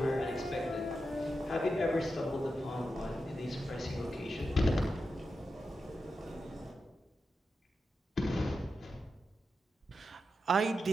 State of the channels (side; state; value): both; normal; correlation 0.89